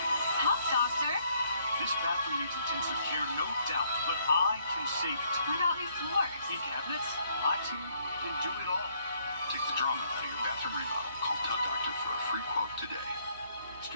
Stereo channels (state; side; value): inverted; both; correlation -0.68